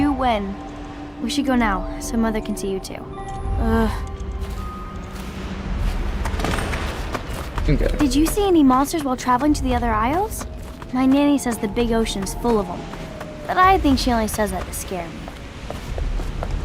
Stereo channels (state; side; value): identical; both; correlation 1.00